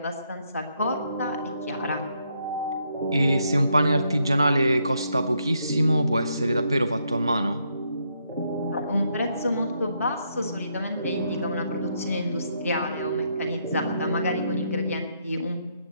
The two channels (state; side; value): inverted; both; correlation -0.75